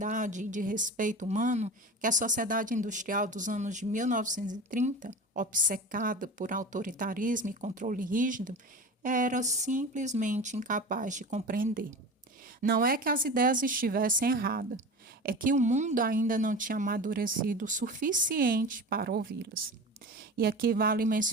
e de respeito humano que a sociedade industrial dos anos de 1930, obcecada por autoritarismo e controle rígido, era simplesmente incapaz de compreender. Não é que as ideias estivessem erradas, é que o mundo ainda não tinha amadurecido o suficiente para ouvi-las. E aqui vale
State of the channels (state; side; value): normal; both; correlation 0.31